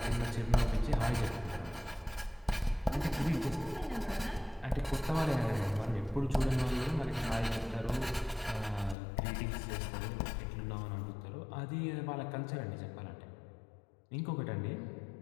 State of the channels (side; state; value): right; drops out; at 9.0 s